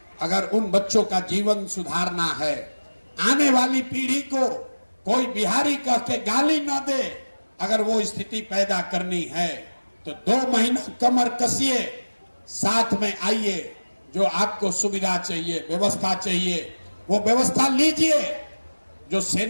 अगर उन बच्चों का जीवन सुधारना है, आने वाली पीढ़ी को कोई बिहारी कह के गाली ना दे, अगर वो स्थिति पैदा करनी है तो 2 महीना कमर कसिए, साथ में आइए, जो आपको सुविधा चाहिए, व्यवस्था चाहिए, वो व्यवस्था लीजिए। जो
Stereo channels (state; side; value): inverted; both; correlation -1.00